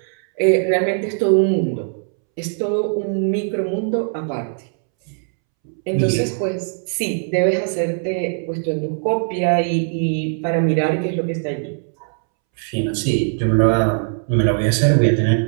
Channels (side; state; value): left; silent; 66 dB below the other